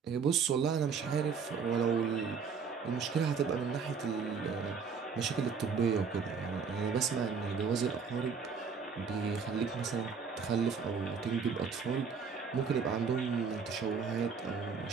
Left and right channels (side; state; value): left; quieter; 5.8 dB